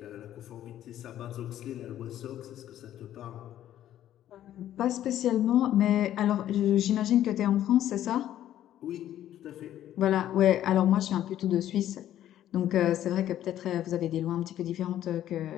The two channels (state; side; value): quieter; right; 12.0 dB